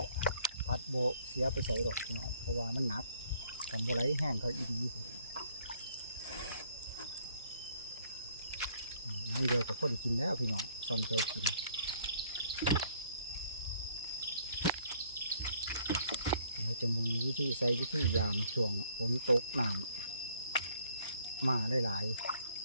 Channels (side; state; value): both; inverted; correlation -0.62